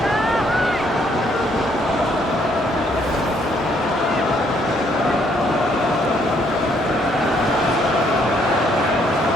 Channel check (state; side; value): normal; both; correlation 0.68